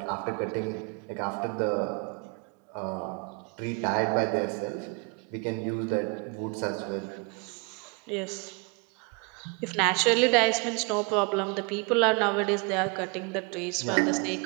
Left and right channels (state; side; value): quieter; left; 32.5 dB